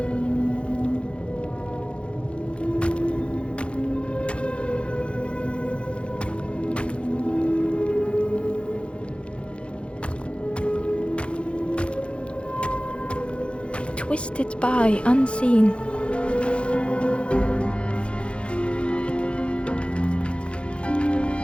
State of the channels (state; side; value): late; right; 0.059 ms